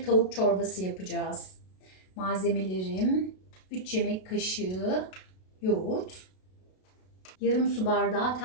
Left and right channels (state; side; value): late; right; 32 ms